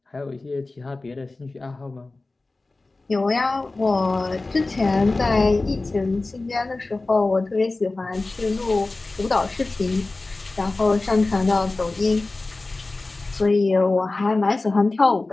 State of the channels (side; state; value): right; quieter; 3.3 dB